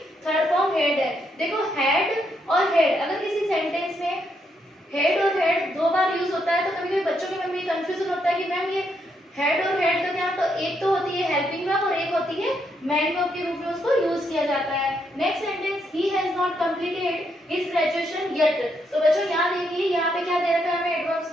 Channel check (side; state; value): both; normal; correlation 0.77